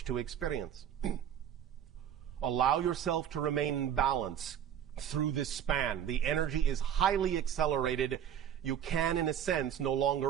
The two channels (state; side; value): quieter; left; 9.5 dB